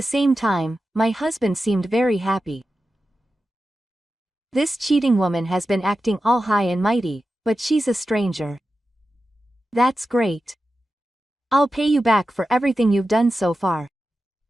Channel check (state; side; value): normal; both; correlation 0.92